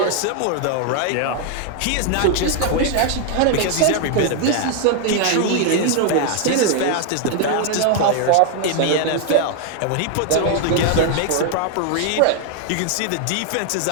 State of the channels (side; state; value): both; different; correlation 0.00